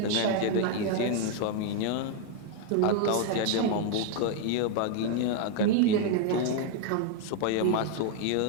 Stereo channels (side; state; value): both; different; correlation 0.00